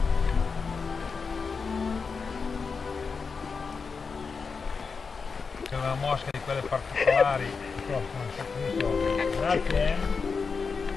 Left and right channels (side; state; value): right; quieter; 5.1 dB